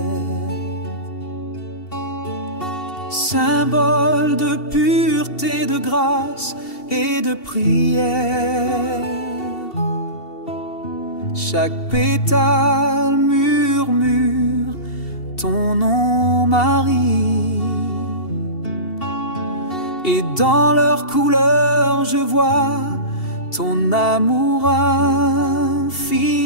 Symbole de pureté, de grâce et de prière. Chaque pétale murmure ton nom, Marie. Et dans leurs couleurs, je vois ton amour infini.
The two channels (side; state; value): right; late; 2.7 ms